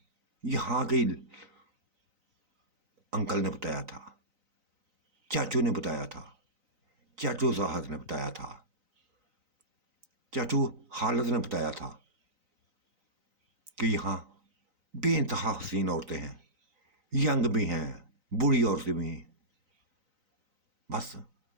यहां के अंकल ने बताया था, चाचू ने बताया था, चाचू जाहद ने बताया था, चाचू हालत ने बताया था कि यहाँ बेइंतहा हसीन औरतें हैं, यंग भी हैं, बूढ़ी औरतें भी हैं। बस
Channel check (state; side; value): late; left; 3.9 ms